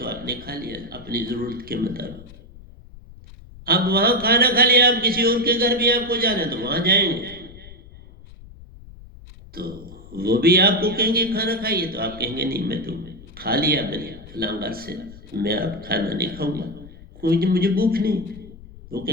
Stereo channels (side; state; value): left; noise; rumble, 19 dB below the sound